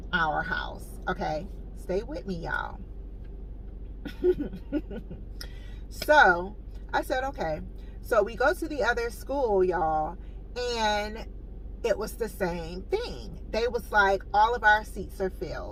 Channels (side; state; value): both; identical; correlation 1.00